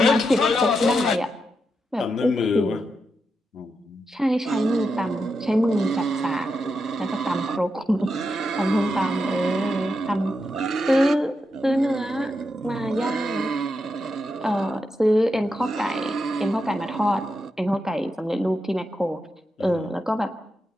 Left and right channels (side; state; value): both; normal; correlation 0.86